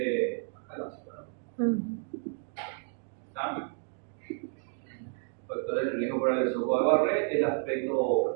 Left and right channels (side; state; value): left; silent; 57 dB below the other